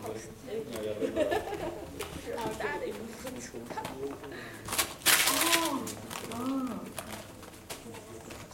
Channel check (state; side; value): identical; both; correlation 1.00